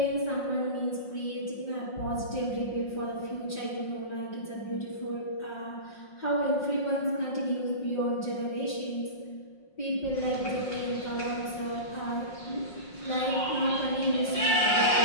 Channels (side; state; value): right; late; 5.5 ms